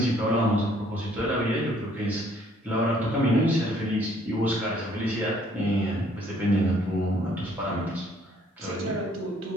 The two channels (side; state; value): both; normal; correlation 0.62